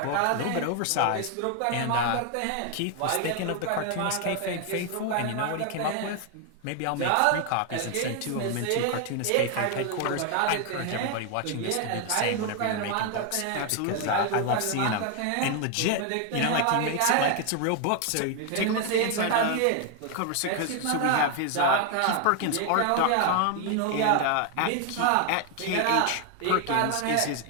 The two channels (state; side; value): different; both; correlation 0.00